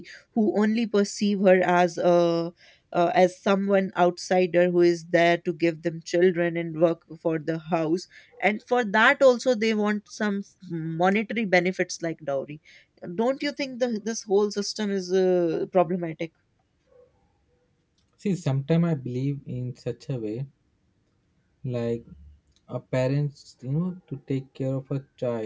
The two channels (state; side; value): identical; both; correlation 1.00